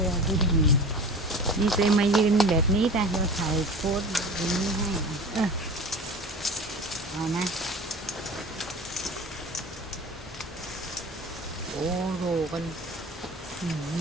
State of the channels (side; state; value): both; normal; correlation 0.36